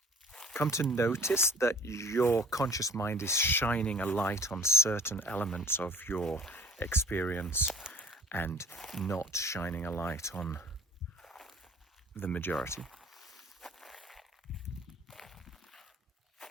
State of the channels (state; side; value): normal; both; correlation 0.50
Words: notice that your conscious mind is shining a light on certain elements of your experience and not shining a light on the majority.